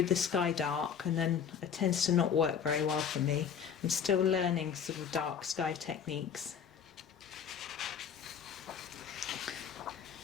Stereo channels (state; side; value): quieter; right; 7.5 dB